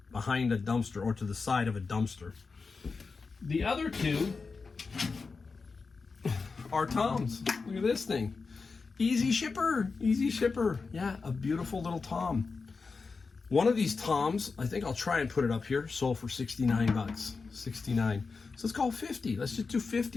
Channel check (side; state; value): right; quieter; 4.5 dB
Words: behind a dumpster or to the side of a dumpster. The other two are toms. Look at this thing. Easy shipper. Yeah, a beautiful little tom. One of these toms, I think I'll try and put it up here, sold for 69 bucks. 69. So let's call it 50. Let's just do